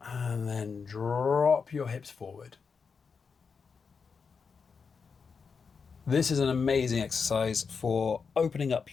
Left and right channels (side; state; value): right; quieter; 5.5 dB